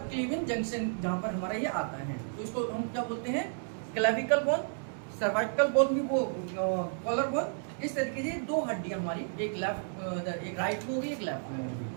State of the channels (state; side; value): silent; left; digital silence